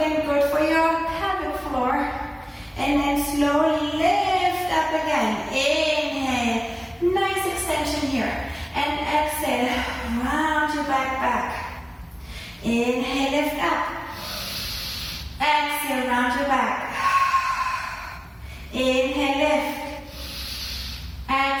good for your pelvic floor. And then slowly lift up again. Inhale, nice extension here. And exhale, round your back. Inhale, lift up. Exhale, round your back. Inhale, lift.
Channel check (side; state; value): both; identical; correlation 1.00